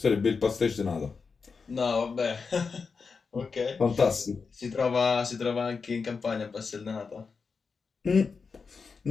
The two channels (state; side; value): quieter; right; 5.1 dB